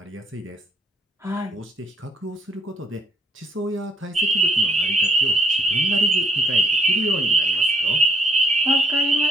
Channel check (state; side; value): normal; both; correlation 0.64